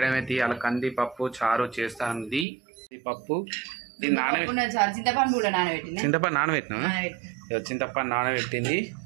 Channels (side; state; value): left; drops out; at 2.5 s